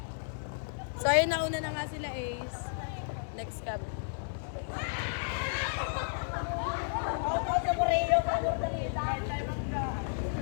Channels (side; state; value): right; silent; digital silence